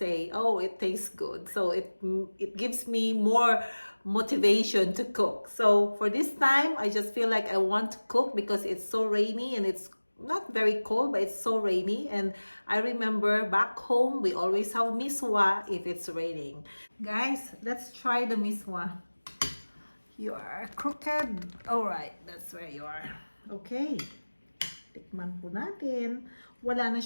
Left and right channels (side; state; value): both; inverted; correlation -1.00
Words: oh, it tastes good. So it gives me more motivation to cook. So for this time, I just feel like I want to cook because it's so rainy and it's not very cold, but it's so rainy. And I remember back home, we always have MISWA if it's raining. Guys, let's try the MISWA. You are crooked. Alright, that's where you are. Okay. Tikman po natin. Wala na